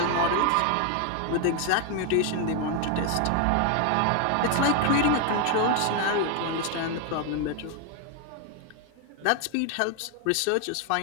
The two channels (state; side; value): different; both; correlation 0.01